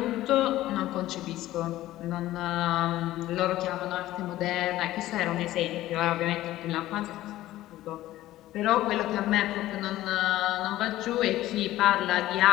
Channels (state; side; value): quieter; right; 15.2 dB